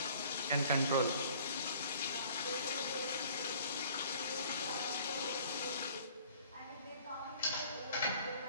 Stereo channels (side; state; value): both; inverted; correlation -0.53